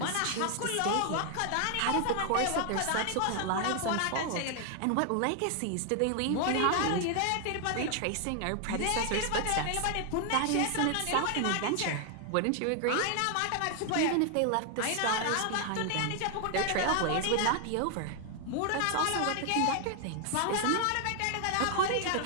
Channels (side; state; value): both; different; correlation 0.00